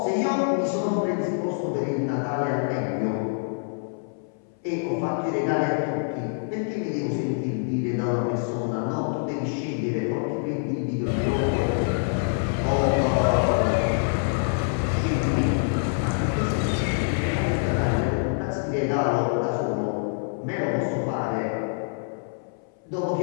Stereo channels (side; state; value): right; silent; 61 dB below the other